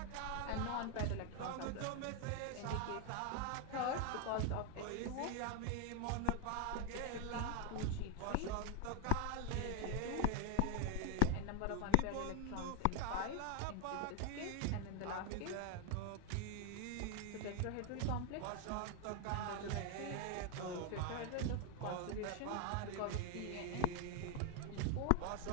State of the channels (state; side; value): different; both; correlation 0.01